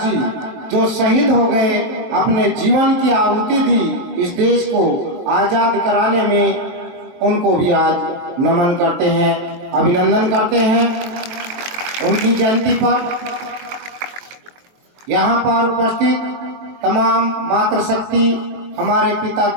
जो शहीद हो गए, अपने जीवन की आहुति दी इस देश को आजाद कराने में, उनको भी आज नमन करते हैं, अभिनंदन करते हैं उनकी जयंती पर। यहाँ पर उपस्थित तमाम मातृशक्ति, हमारे पिता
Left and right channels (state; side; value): late; left; 23 ms